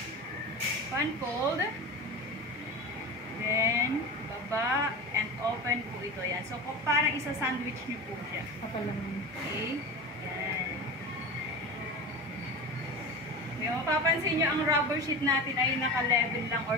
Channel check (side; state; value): both; normal; correlation 0.28